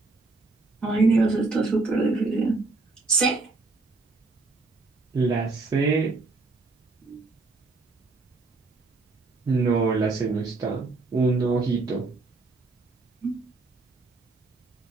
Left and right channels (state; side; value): quieter; left; 3.6 dB